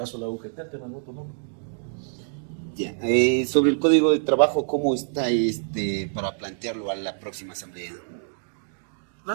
de la UGT, el tema del voto nulo. Ya. Sobre el código de trabajo, ¿cómo está para plantearlo a la próxima asamblea?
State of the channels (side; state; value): left; silent; digital silence